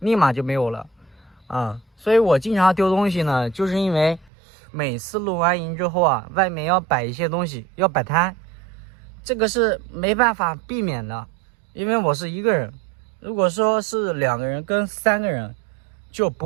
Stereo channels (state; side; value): drops out; left; at 4.3 s